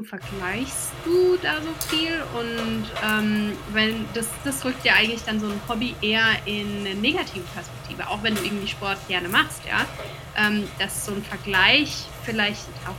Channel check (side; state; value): both; identical; correlation 1.00